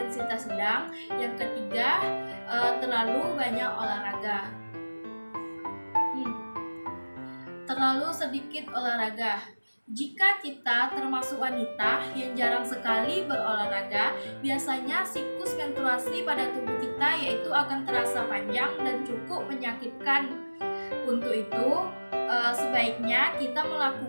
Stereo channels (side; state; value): both; inverted; correlation -1.00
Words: sedang, yang ketiga terlalu banyak olahraga. Terlalu sedikit olahraga. Jika kita termasuk wanita yang jarang sekali berolahraga, biasanya siklus menstruasi pada tubuh kita yaitu akan terasa panjang dan cukup menyakitkan. Untuk itu, sebaiknya kita